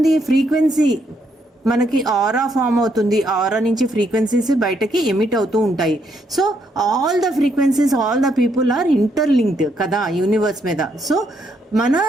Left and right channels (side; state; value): both; normal; correlation 0.75